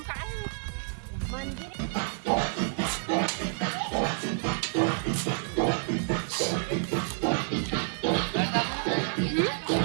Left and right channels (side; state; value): left; silent; digital silence